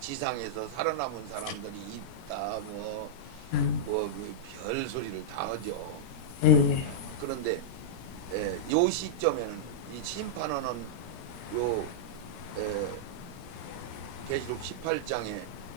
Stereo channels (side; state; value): right; late; 17 ms